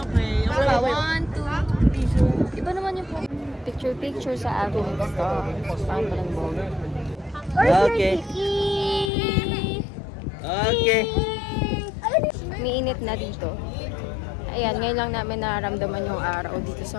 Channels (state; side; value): drops out; right; at 9.1 s